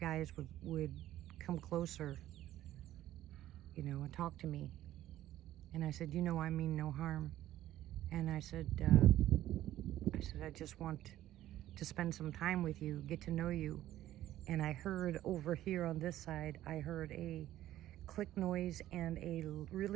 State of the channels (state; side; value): quieter; left; 13.6 dB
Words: would come closer, you know, and talk to me. And I said, you know, I mean no harm. And I said, I just want to spend some time with you, get to know you. And I heard over here on this side, I heard a click noise and a